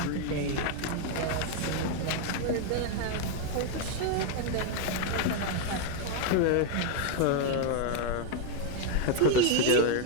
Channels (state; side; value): different; both; correlation 0.01